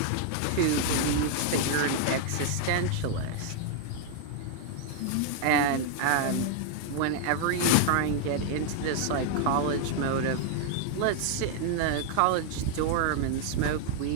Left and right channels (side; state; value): both; different; correlation 0.00